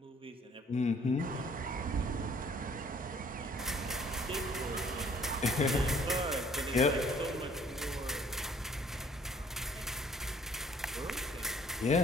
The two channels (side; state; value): both; normal; correlation 0.58